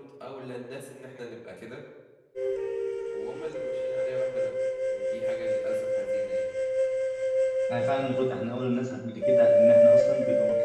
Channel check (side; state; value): both; identical; correlation 1.00